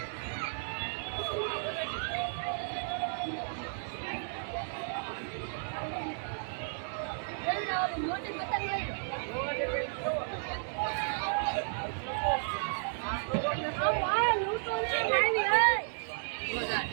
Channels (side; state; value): left; silent; 56 dB below the other